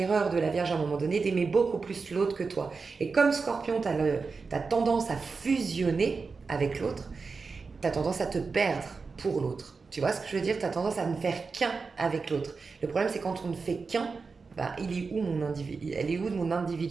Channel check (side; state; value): left; quieter; 4.6 dB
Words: de la Vierge à un moment donné d'aimer beaucoup plus l'autre que toi. Et comme Scorpion, tu as tendance à fusionner avec l'autre, tu as tendance à te perdre pour l'autre. Tu vois ce que je veux dire? Tu as tendance à ne faire qu'un avec l'autre. Le problème, c'est quand on ne fait qu'un, bah, elle est où de mon